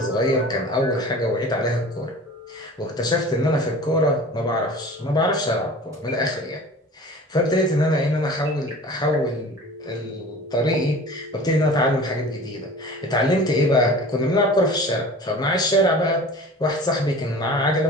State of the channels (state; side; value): normal; both; correlation 0.41